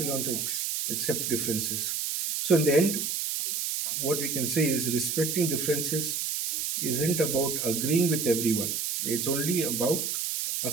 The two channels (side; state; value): right; noise; hiss, 1 dB below the sound